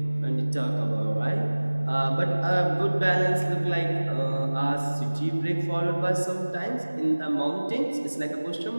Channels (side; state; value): both; inverted; correlation -1.00